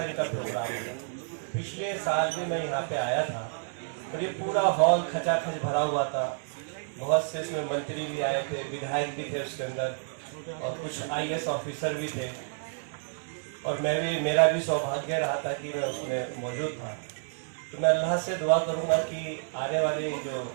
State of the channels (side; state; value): left; silent; 58 dB below the other